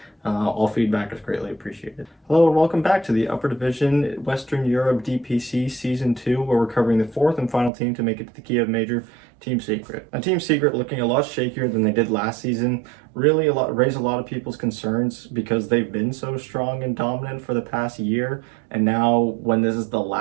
All feedback is greatly appreciated. Hello and welcome back to the Upper Division Western Europe DPC Season 2, where we're covering the fourth and final team to make it to the Kiev Major, Team Secret. Now, Team Secret looking a lot shakier than they did last season. Really raised a lot of people's concerns because they've been so strong and dominant for the past year. And now when this is the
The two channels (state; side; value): drops out; left; at 7.7 s